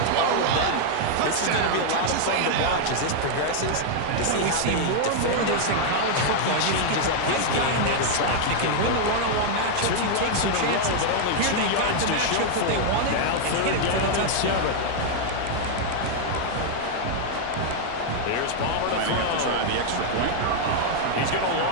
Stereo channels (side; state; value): both; different; correlation 0.00